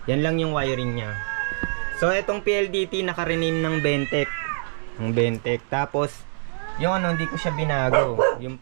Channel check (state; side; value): silent; left; digital silence